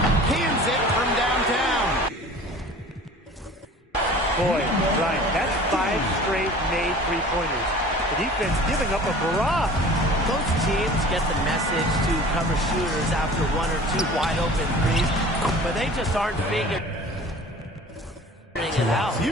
Cans it from downtown. Boy, Brian, that's 5 straight made three-pointers. The defense giving up a barrage. Most teams get the message to cover shooters after 1 or 2 wide-open threes, but they just aren't figuring it out.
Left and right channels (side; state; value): both; normal; correlation 0.44